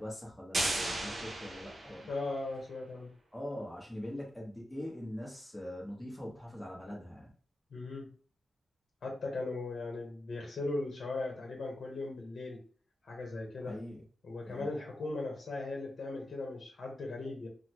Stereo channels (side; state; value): both; normal; correlation 0.88